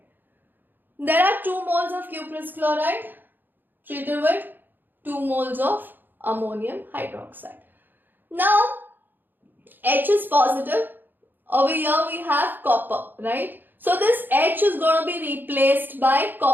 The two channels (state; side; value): late; left; 0.091 ms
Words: There are 2 moles of cuprous chloride treated with 2 moles of ammonium hydroxide. Now, H is positive. Over here we have copper, right? So this H is going to be replaced by